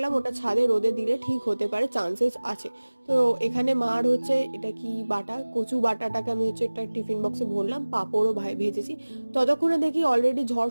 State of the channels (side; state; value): both; inverted; correlation -1.00